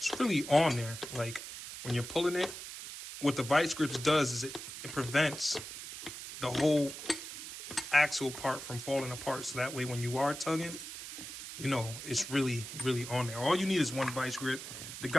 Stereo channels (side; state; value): right; noise; hiss, 10 dB below the sound